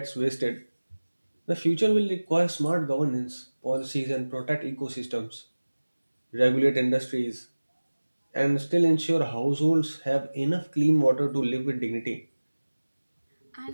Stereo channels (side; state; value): both; inverted; correlation -1.00